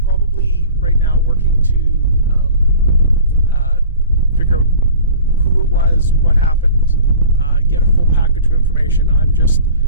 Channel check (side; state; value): both; inverted; correlation -0.42